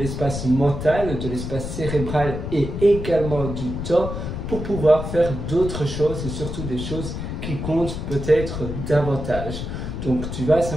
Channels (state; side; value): noise; left; rumble, 5 dB below the sound